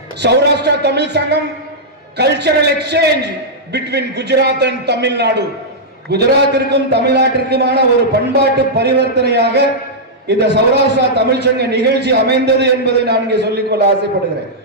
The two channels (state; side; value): normal; both; correlation -0.09